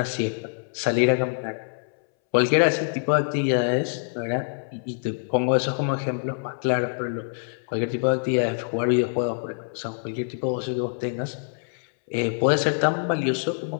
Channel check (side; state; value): right; silent; 62 dB below the other